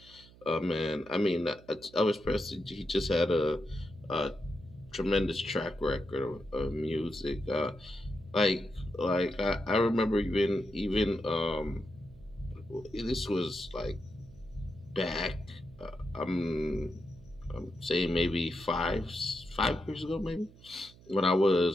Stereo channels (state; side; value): noise; right; hum, 23 dB below the sound